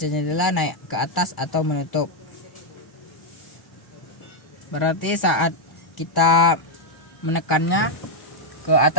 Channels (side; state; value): right; late; 1.0 ms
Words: jendela naik ke atas atau menutup. Berarti saat kita menekannya ke